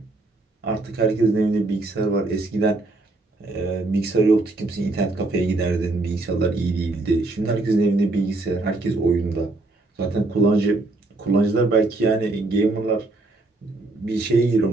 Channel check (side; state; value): left; quieter; 3.1 dB